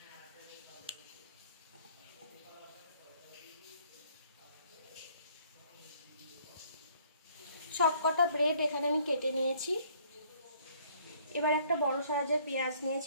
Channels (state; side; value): inverted; both; correlation -0.61